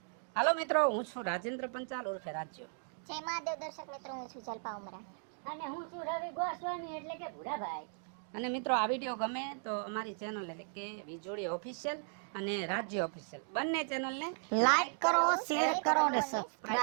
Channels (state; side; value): silent; left; 54 dB below the other